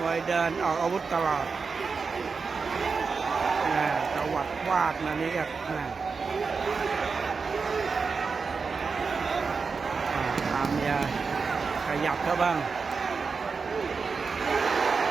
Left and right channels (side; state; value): left; quieter; 4.9 dB